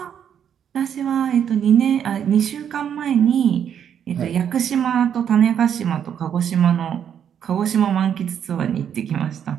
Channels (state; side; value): quieter; left; 8.7 dB